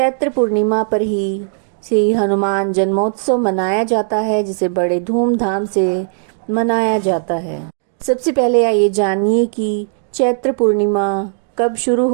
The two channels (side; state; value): left; silent; digital silence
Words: पूर्णिमा पर ही श्री हनुमान जन्मोत्सव मनाया जाता है, जिसे बड़े धूमधाम से मनाया जाता है। सबसे पहले आइए जानिए कि चैत्र पूर्णिमा कब शुरू